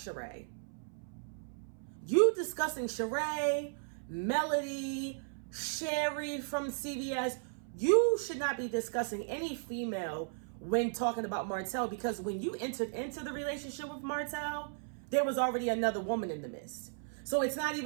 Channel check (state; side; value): silent; left; 54 dB below the other